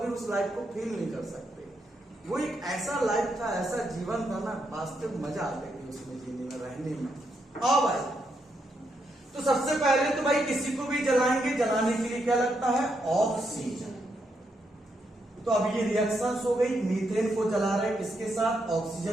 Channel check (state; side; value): normal; both; correlation 0.80